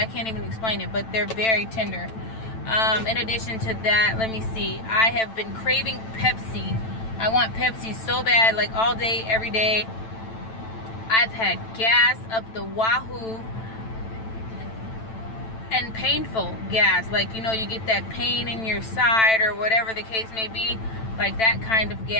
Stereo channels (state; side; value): late; right; 9.0 ms